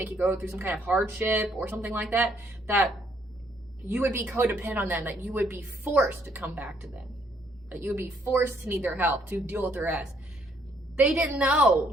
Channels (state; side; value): normal; both; correlation 0.68